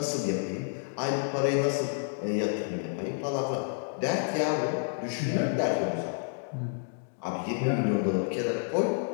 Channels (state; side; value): silent; right; digital silence